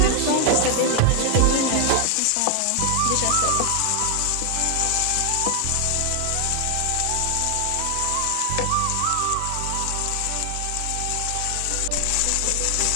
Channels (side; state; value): both; different; correlation 0.00